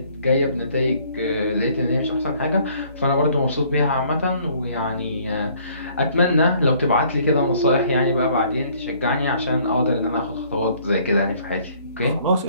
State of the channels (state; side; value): inverted; both; correlation -0.60